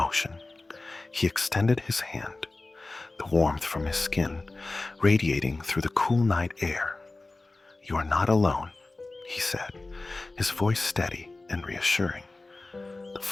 he extended his hand, the warmth from his skin radiating through the cool night air. "You are not alone," he said, his voice steady and reassuring. "The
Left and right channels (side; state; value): right; quieter; 3.2 dB